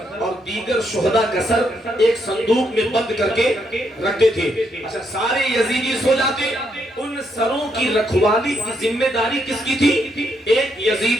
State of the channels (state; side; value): normal; both; correlation 0.77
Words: اور دیگر شہداء کا سر ایک صندوق میں بند کر کے رکھتے تھے۔ اچھا، سارے یزیدی سو جاتے، ان سروں کی رکھوالی کی ذمہ داری کس کی تھی؟ ایک